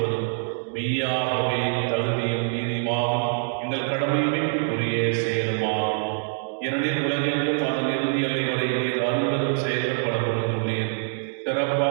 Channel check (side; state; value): left; silent; digital silence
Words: மெய்யாகவே தகுதியும் நீதியுமாகும் எங்கள் கடமையுமே உரிய செயலுமாகும். ஏனெனில் உலகெங்கும் அதன் இறுதி எல்லை வரை நீர் அருள்வதும் செயல்கள் பல பொழுதுள்ளீர்.